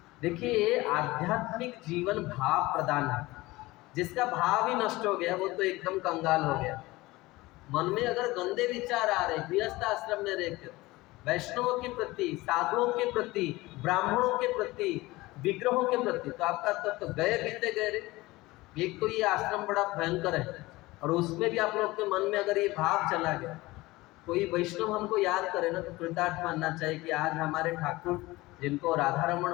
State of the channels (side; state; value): right; quieter; 20.1 dB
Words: देखिए, आध्यात्मिक जीवन भाव प्रदान है। जिसका भाव ही नष्ट हो गया वो तो एकदम कंगाल हो गया। मन में अगर गंदे विचार आ रहे, गृहस्थ आश्रम में रहकर वैष्णवों के प्रति, साधुओं के प्रति, ब्राह्मणों के प्रति, विग्रहों के प्रति, तो आपका तो गए बीते गए रे। एक तो ये आश्रम बड़ा भयंकर है और उसमें भी आप लोग के मन में अगर ये भाव चला गया, कोई वैष्णव हमको याद करे ना तो कृतार्थ मानना चाहिए कि आज हमारे ठाकुर जिनको राधा रमण